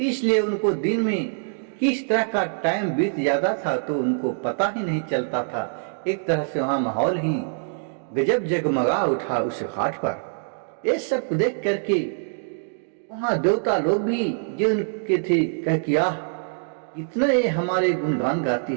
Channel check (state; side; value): silent; left; digital silence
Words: उनको दिन में किस तरह का टाइम बीत जाता था तो उनको पता ही नहीं चलता था। एक तरह से वहाँ माहौल ही गजब जगमगा उठा उस घाट पर। ये सब देख करके वहाँ देवता लोग भी जो उनके थे कह किया इतना ये हमारे गुणगान गाती